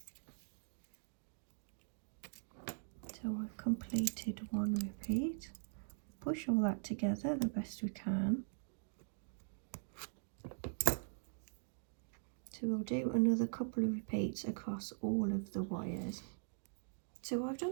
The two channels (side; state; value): left; silent; digital silence